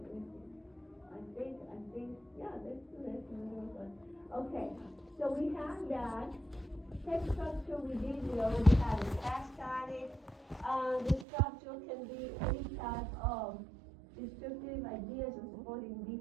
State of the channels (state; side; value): drops out; left; at 11.2 s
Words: I think, yeah, let's do this. Okay, so we have that. Text structure we already had a task on it. The structure can be any type of descriptive ideas or supporting